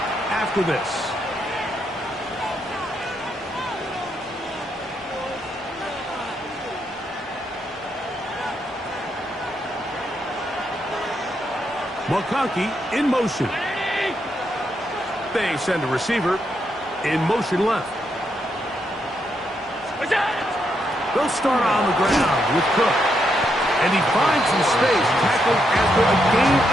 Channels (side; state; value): both; normal; correlation 0.79